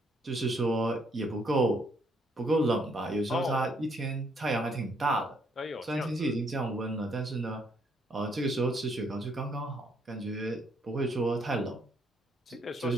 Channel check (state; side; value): normal; both; correlation 0.70